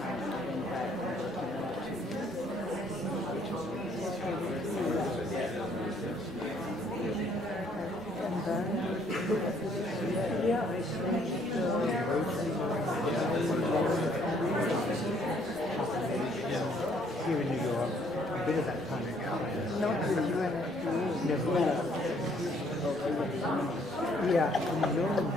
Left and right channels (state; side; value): normal; both; correlation 0.64